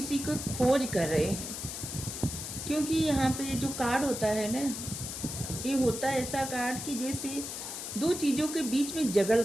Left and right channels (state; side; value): noise; left; hiss, 7 dB below the sound